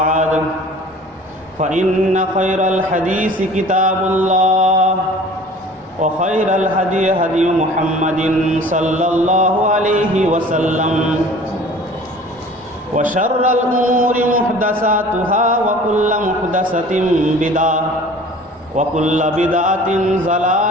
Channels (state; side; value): normal; both; correlation 0.46